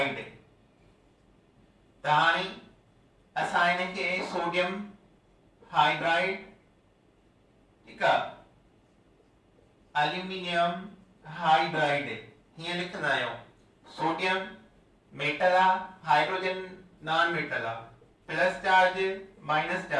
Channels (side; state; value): both; identical; correlation 1.00